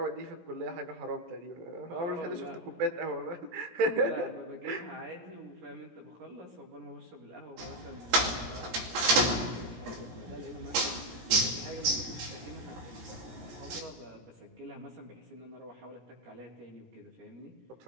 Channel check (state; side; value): late; left; 17 ms